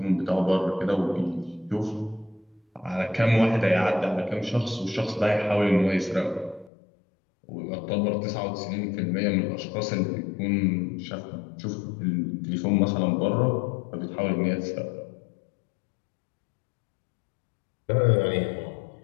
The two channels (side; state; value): right; drops out; at 6.7 s